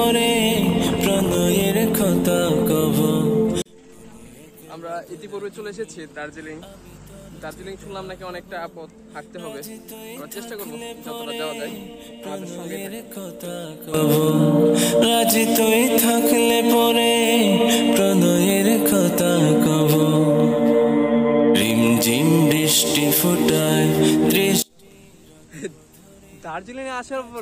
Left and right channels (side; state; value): both; identical; correlation 1.00